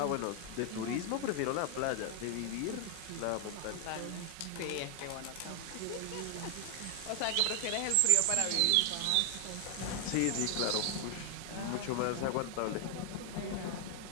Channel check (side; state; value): both; different; correlation 0.00